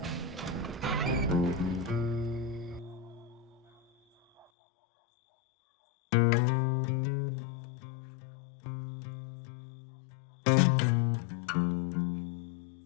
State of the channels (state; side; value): drops out; right; at 4.5 s